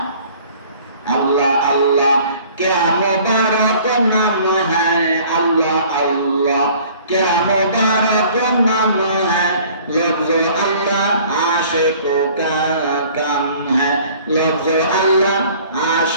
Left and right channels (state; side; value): inverted; both; correlation -0.52